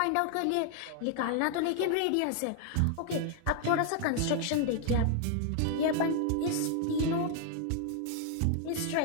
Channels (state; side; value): different; both; correlation 0.00